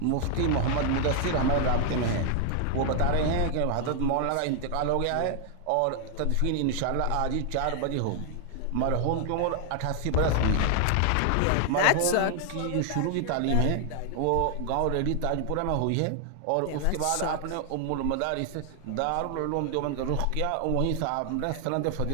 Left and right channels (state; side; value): different; both; correlation 0.00